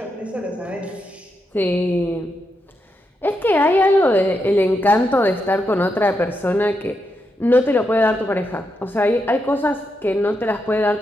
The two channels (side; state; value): both; normal; correlation 0.83